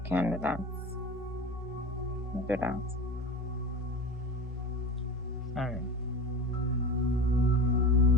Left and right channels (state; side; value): normal; both; correlation 0.30